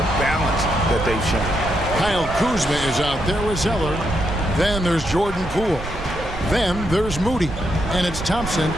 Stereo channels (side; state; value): right; noise; rumble, 10 dB below the sound